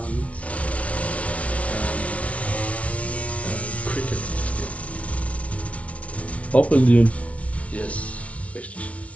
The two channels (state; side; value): late; right; 0.064 ms